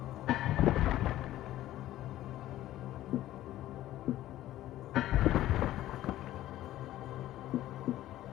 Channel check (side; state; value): right; quieter; 14.3 dB